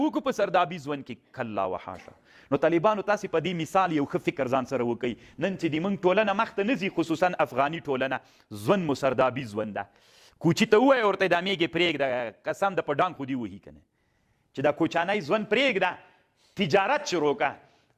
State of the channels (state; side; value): identical; both; correlation 1.00